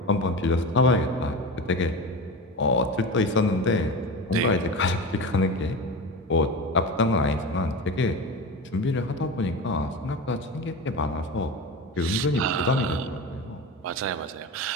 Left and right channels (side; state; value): both; normal; correlation 0.27